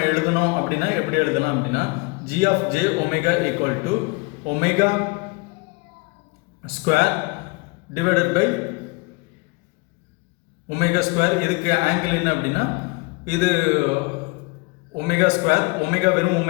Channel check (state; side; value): quieter; right; 27.1 dB